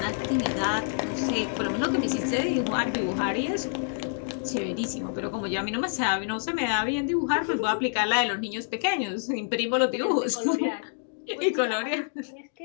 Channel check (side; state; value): right; silent; digital silence